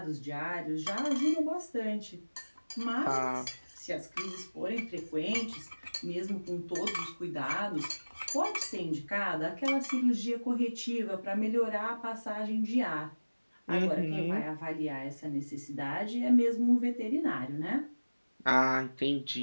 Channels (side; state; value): both; inverted; correlation -1.00